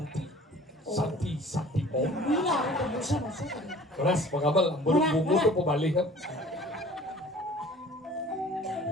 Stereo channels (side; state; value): both; normal; correlation 0.48